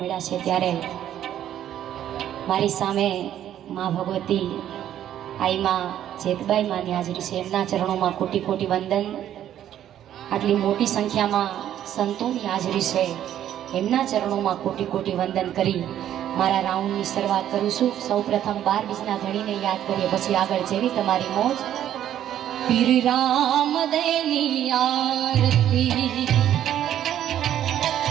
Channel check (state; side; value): quieter; left; 11.1 dB